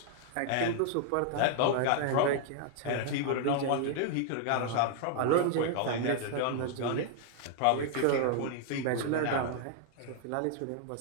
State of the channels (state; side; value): different; both; correlation 0.00